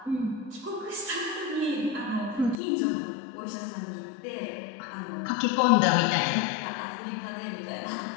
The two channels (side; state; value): right; drops out; at 2.6 s